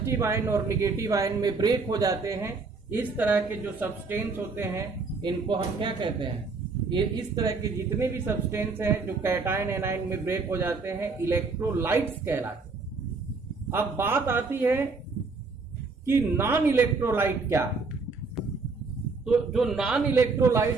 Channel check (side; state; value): left; quieter; 4.2 dB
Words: आयन और नेगेटिव आयन में ब्रेक हो जाते हैं। इस तरह के जो सब्सटेंस होते हैं इनको हम क्या कहते हैं? ये इस तरह के जितने भी सब्सटेंस हैं जो कैटायन एनायन में ब्रेक हो जाते हैं, इलेक्ट्रोलाइट्स कहलाते हैं। अब बात आती है कि नॉन इलेक्ट्रोलाइट क्या है। तो जो नॉन इलेक्ट्रोलाइट